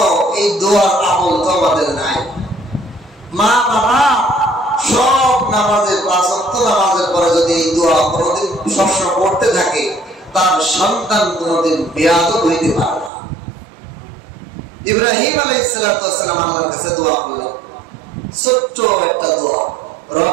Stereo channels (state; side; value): drops out; left; at 13.1 s